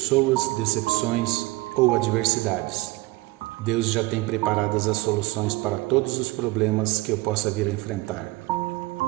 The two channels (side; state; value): left; quieter; 21.1 dB